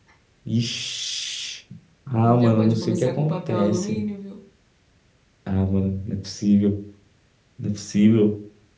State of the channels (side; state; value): both; identical; correlation 1.00